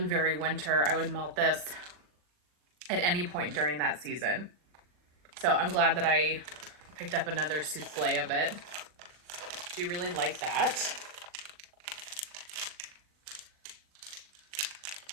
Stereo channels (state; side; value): late; left; 40 ms